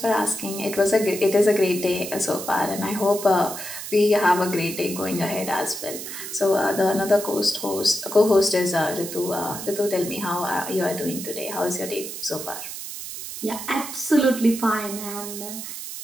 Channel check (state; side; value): noise; right; hiss, 9 dB below the sound